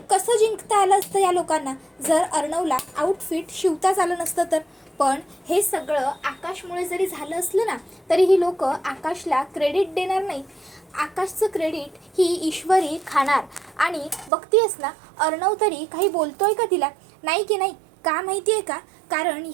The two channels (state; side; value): drops out; left; at 14.3 s